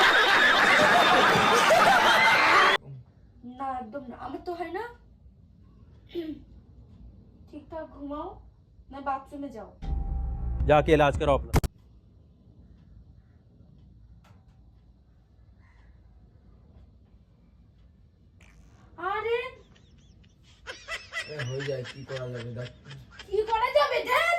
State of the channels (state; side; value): identical; both; correlation 1.00